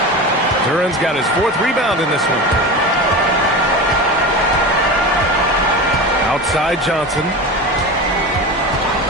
Duran's got his 4th rebound in this one. Outside Johnson.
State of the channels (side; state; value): both; normal; correlation 0.27